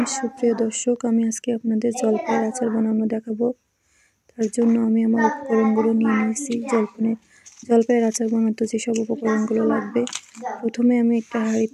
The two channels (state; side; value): identical; both; correlation 1.00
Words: সুপ্রিয় দর্শক, আমি আজকে আপনাদের জলপাইয়ের আচার বানানো দেখাবো। তার জন্য আমি আমার উপকরণগুলো নিয়ে নিয়েছি। জলপাইয়ের আচার বানাতে যেসব উপকরণগুলো লাগবে, প্রথমে আমি একটা